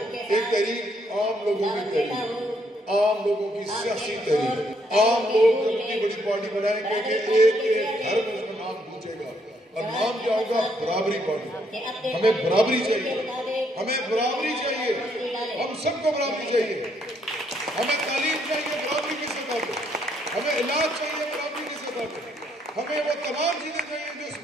ایک تحریک عام لوگوں کی تحریک، عام لوگوں کی سیاسی تحریک. عام لوگ اپنی بڑی پارٹی بنائیں گے کہ ایک ایک گھر میں اس کا نام پوچھے گا اور نام کیا ہوگا؟ برابری پارٹی. ہمیں برابری چاہیے، ہمیں برابری چاہیے، ہم سب کو برابری چاہیے. ہمیں تعلیم چاہیے برابری کی سطح پہ، ہمیں علاج چاہیے برابری کی سطح پہ، ہمیں وہ تمام چیزیں چاہیے جو اس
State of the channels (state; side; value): normal; both; correlation 0.72